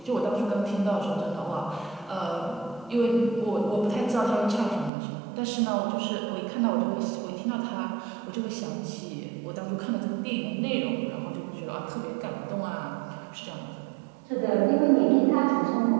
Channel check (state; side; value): drops out; left; at 4.9 s